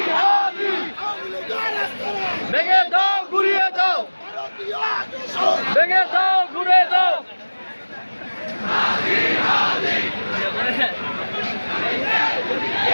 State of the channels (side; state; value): both; inverted; correlation -1.00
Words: হাদি আওয়ামী লীগের রাস্তারা ভেঙে দাও ঘুরিয়ে দাও ভারতীয় আগ্রাসন ভেঙে দাও ঘুরিয়ে দাও হাদি হাদি